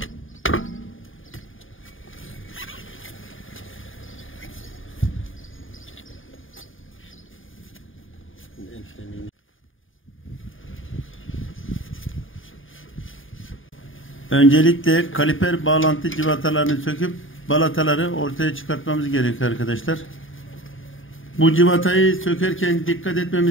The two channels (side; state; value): right; late; 0.58 ms